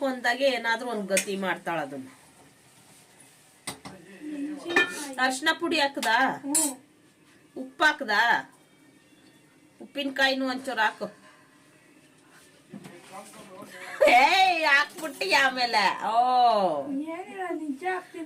ಅಂದಾಗೆ ಏನಾದ್ರೂ ಒಂದು ಗತಿ ಮಾಡ್ತಾಳ. ಅದನ್ನ ಅರ್ಶಿನ ಪುಡಿ ಹಾಕದಾ, ಉಪ್ಪು ಹಾಕದಾ, ಉಪ್ಪಿನಕಾಯಿನೂ ಒಂಚೂರು ಹಾಕು. ಹಾಕ್ಬಿಟ್ಟಿ ಆಮೇಲೆ ನಿಜ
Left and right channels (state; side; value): identical; both; correlation 1.00